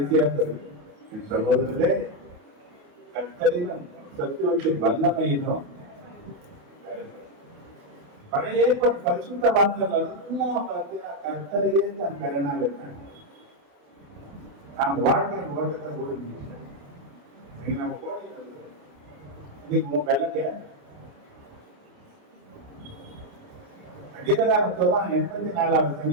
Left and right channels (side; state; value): left; late; 28 ms